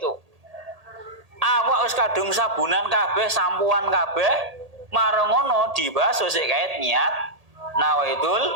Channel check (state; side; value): late; left; 1.8 ms